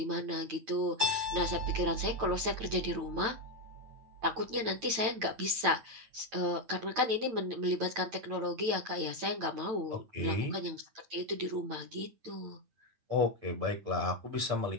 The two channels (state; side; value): late; left; 9.0 ms